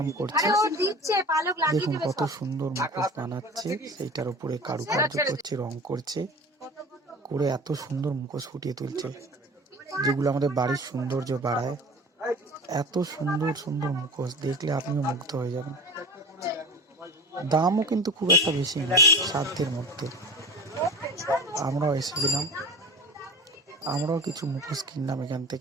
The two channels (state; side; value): normal; both; correlation 0.36